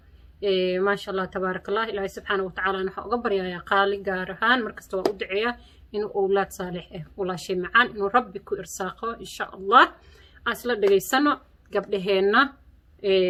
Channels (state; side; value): identical; both; correlation 1.00